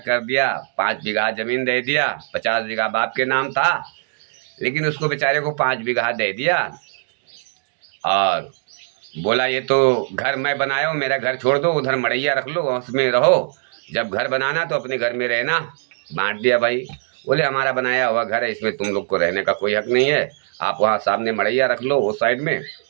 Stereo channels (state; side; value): silent; left; digital silence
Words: कर दिया। 5 बीघा जमीन दे दिया। 50 बीघा बाप के नाम था, लेकिन उसको बेचारे को 5 बीघा दे दिया और बोला, ये तो घर मैं बनाया हूँ, मेरा घर छोड़ दो, उधर मड़ैया रख लो, उसमें रहो, जब घर बनाना तो अपने घर में रहना। बांट दिया भाई। बोले, हमारा बनाया हुआ घर है, इसमें तुम लोग को रहने का कोई हक नहीं है। आप वहाँ सामने मड़ैया रख लो, उस साइड में,